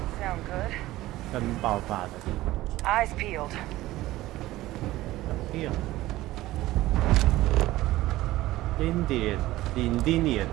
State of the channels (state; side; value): quieter; left; 16.7 dB